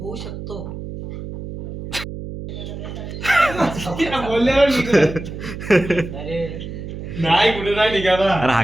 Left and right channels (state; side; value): noise; right; hum, 9 dB below the sound